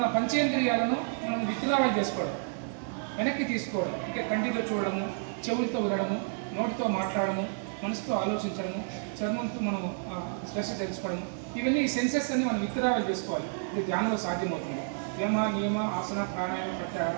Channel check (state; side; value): silent; left; digital silence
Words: పంచేంద్రియాలను మనం విత్డ్రావల్ చేసుకోవడం, వెనక్కి తీసుకోవడం. అంటే కంటితో చూడడము, చెవులతో వినడము, నోటితో మాట్లాడము, మనసుతో ఆలోచించడము, చర్మంతో మనం స్ట్రెస్ తెలుసుకోవడము. ఇవన్నీ ఈ సెన్సెస్ అన్ని మనం విత్డ్రావల్ చేసుకోవాలి. ఇది ధ్యానంలో సాధ్యమవుతుంది. నియమ ఆసన, ప్రాణాయామ, ప్రత్యాహార.